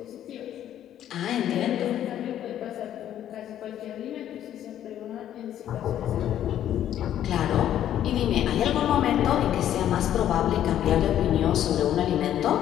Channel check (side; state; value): right; quieter; 11.2 dB